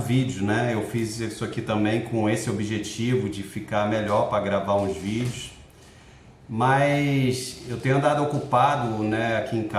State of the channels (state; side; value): identical; both; correlation 1.00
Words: vídeo, né? Eu fiz isso aqui também com esse objetivo de ficar melhor para gravar uns vídeos. Mas eu tenho andado ocupado, né, aqui em